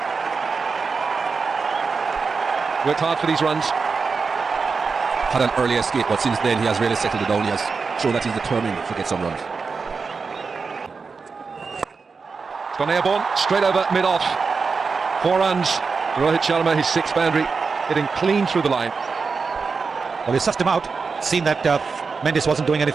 Worked hard for these runs. Had an early escape, but since then he has really settled it down. He has shown that he's determined to get some runs. It's gone airborne, straight over mid-off. 4 runs. Rohit Sharma, his 6th boundary, hitting clean through the line. Well, he sussed him out. Seen that Mendes wasn't doing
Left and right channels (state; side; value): quieter; left; 4.9 dB